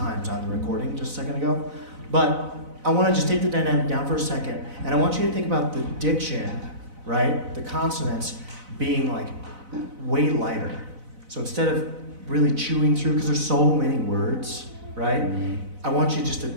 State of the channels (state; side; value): late; left; 4.0 ms